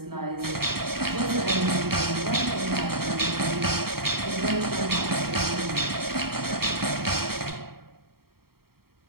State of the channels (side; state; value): left; late; 0.94 ms